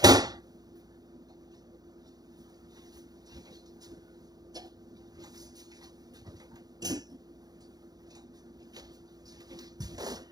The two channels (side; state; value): left; late; 0.19 ms